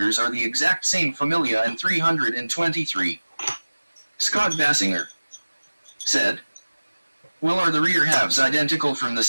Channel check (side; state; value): both; inverted; correlation -1.00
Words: are the exact same Familia and 323. Scott Bassinger said, well, are the rear halves identical from the